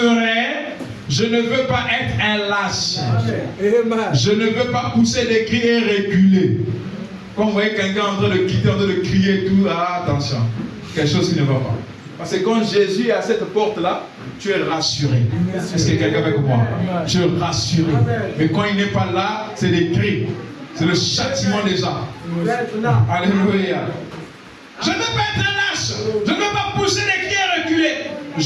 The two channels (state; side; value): identical; both; correlation 1.00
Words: je ne veux pas être un lâche. Amen. Je ne veux pas pousser des cris et reculer. Quand vous voyez quelqu'un en train de quitter, en train de crier et tout, ah, attention, quelque chose qui ne va pas. Parce que quand Jésus est à cette porte-là, tu es rassuré. Est-ce que quelqu'un avec moi? Tu es rassuré. Mais quand il n'est pas là, c'est des cris. C'est le châtiment déjà. Alléluia. Je ne veux pas être un lâche. Je ne veux pas pousser les cris et reculer.